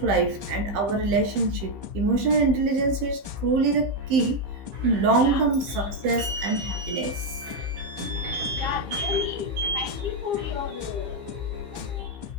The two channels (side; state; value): left; late; 15 ms